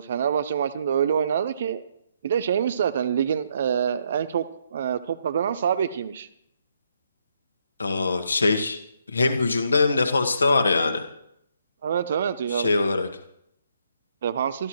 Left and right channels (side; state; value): both; inverted; correlation -0.74